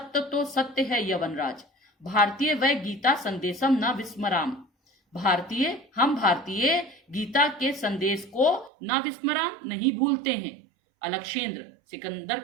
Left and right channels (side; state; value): left; drops out; at 8.7 s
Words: तो सत्य है यवनराज। भारतीय वह गीता संदेशम न विस्मराम, भारतीय हम भारतीय गीता के संदेश को न विस्मराम नहीं भूलते हैं। अलक्षेंद्र सिकंदर